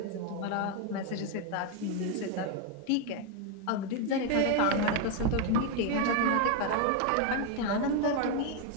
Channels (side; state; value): both; different; correlation 0.01